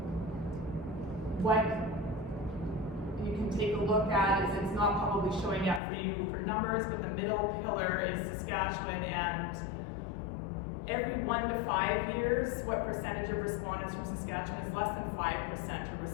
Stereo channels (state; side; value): drops out; right; at 5.8 s